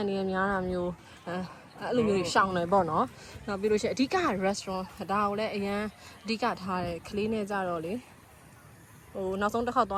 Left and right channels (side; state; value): both; identical; correlation 1.00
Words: နေနဲ့များတာမျိုးအဲ့လိုမျိုးရှောင်တယ်ပေါ့နော်နောက်ပြီးလို့ရှိရင်အဓိက restaurant ဒါကိုလည်းအရန်အဓိကထားတယ်ခလေးနဲ့ကြတော့လေဟိုနောက်ဆုံးတစ်ခေါက်သွ